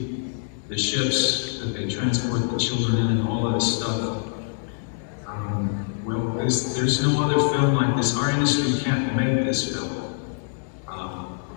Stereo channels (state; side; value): silent; right; digital silence